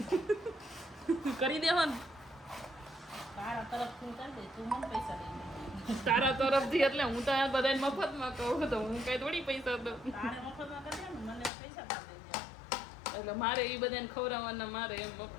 કરી દેવો ને તારા તરફથી. એટલે હું તો આ બધાને મફતમાં કહું તો હું કઈ થોડી પૈસા દઉં. એટલે મારે એ બધાને ખવડાવવાના, મારે એમ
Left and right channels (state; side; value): drops out; right; at 11.5 s